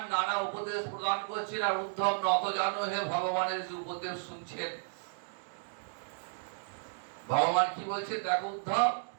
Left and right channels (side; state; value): left; silent; digital silence